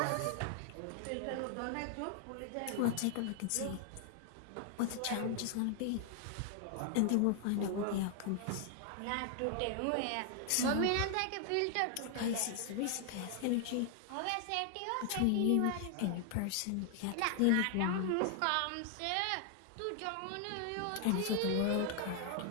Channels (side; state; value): both; different; correlation 0.00